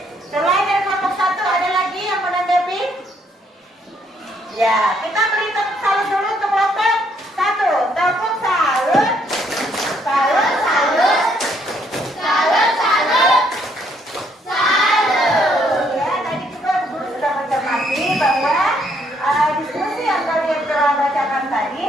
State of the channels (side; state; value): both; normal; correlation 0.69